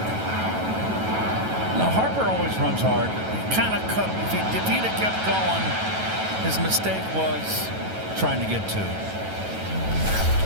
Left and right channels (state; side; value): late; left; 9.2 ms